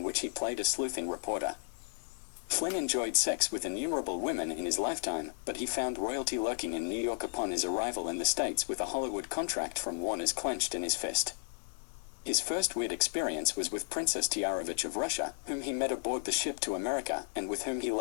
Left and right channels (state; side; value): silent; right; digital silence